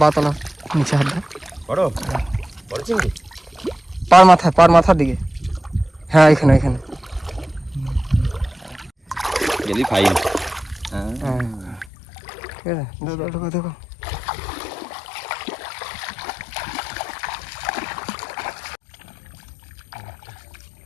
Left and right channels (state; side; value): drops out; right; at 11.9 s